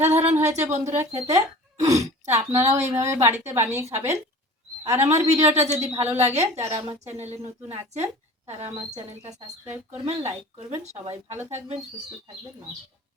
হয়েছে বন্ধুরা খেতে। তা আপনারাও এইভাবে বাড়িতে বানিয়ে খাবেন। আর আমার ভিডিওটা যদি ভালো লাগে, যারা আমার চ্যানেলে নতুন আছেন তারা আমার চ্যানেলটা সাবস্ক্রাইব করবেন, লাইক করবেন। সবাই ভালো থাকবেন, সুস্থ থাকবেন। নমস্কার।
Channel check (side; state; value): both; normal; correlation 0.42